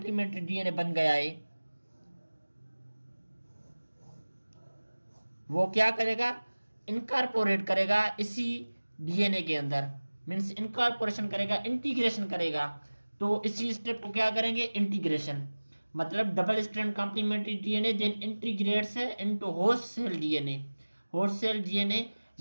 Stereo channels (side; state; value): both; inverted; correlation -1.00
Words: डीएनए बन गया है, वो क्या करेगा, इनकॉर्पोरेट करेगा इसी डीएनए के अंदर, मीन्स इनकॉर्पोरेशन करेगा, इंटीग्रेशन करेगा। तो इसी स्टेप को क्या करेंगे, इंटीग्रेशन, मतलब double strand complementary DNA then integrates into host cell DNA. Host cell DNA